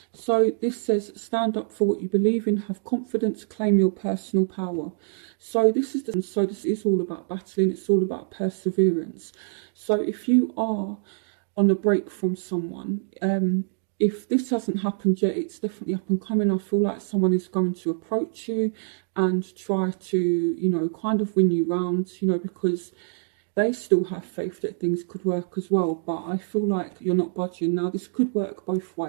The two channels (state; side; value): silent; left; digital silence